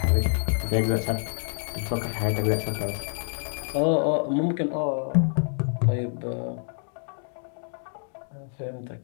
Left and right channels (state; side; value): silent; right; 59 dB below the other